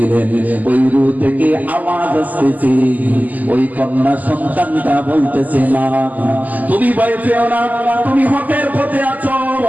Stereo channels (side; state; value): left; late; 0.080 ms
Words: ওই রূহ থেকে আওয়াজ আসতেছে, ওই কন্যা সন্তানটা বলতেছে, মা তুমি ভয় পেও না, তুমি হকের পথে আছো,